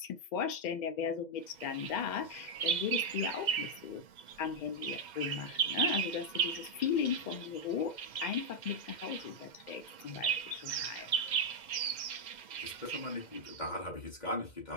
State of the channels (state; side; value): late; right; 2.1 ms